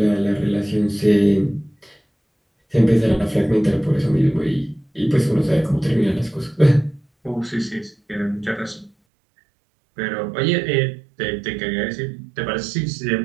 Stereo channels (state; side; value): drops out; left; at 8.9 s